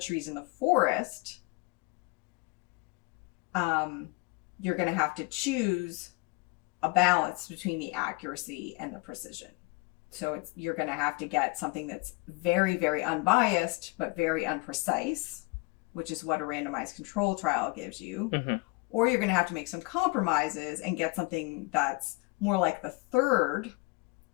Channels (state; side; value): quieter; right; 26.2 dB